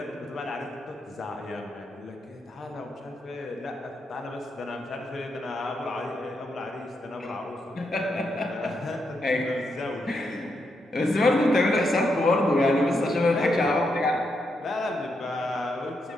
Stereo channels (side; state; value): both; normal; correlation 0.82